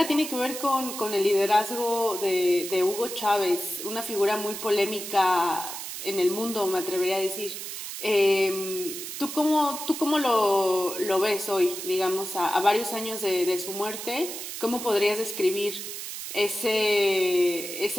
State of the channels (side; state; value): right; noise; hiss, 8 dB below the sound